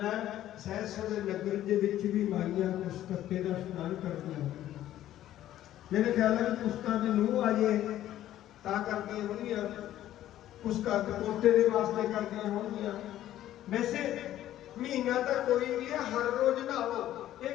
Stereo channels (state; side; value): quieter; right; 12.9 dB